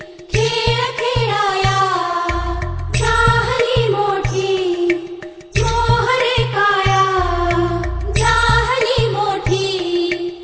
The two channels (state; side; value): identical; both; correlation 1.00